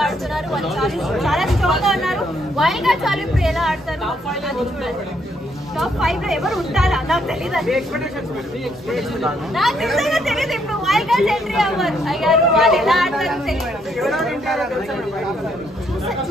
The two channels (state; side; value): normal; both; correlation 0.72